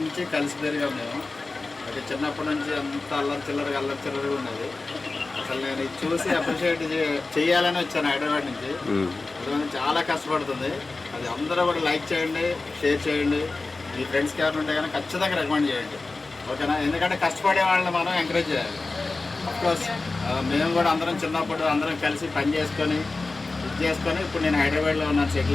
కలిసి పెరిగాం మేము. ఓకే చిన్నప్పటి నుంచి అంత అల్లరి చిల్లరగా ఉన్నది. అసలు నేను ఇది చూసి అప్రిషియేట్ చేయాలని వచ్చాను హైదరాబాద్ నుంచి. అందుకని చాలా కష్టపడుతుంది. అది అందరూ కూడా లైక్ చేయండి, షేర్ చేయండి. మీ ఫ్రెండ్స్కి ఎవరు ఉంటే కానీ ఖచ్చితంగా రికమెండ్ చేయండి ఓకేనా. ఎందుకంటే కష్టపడే వాళ్ళని మనం ఎంకరేజ్ చేయాలి. అఫ్కోర్స్ మేము కూడా అందరం చిన్నప్పుడు అందరం కలిసి పని చేసుకొని ఇప్పుడు నేను హైదరాబాద్లో ఉన్నాను,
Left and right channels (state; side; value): quieter; right; 3.5 dB